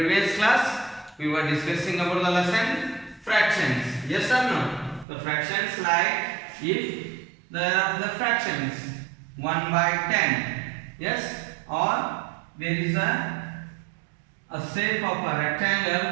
class, we were discussing about the lesson fractions. Yes or no? The fractions like if there are the fractions 1 by 10. Yes, or there is a shape of a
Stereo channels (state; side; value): drops out; left; at 5.1 s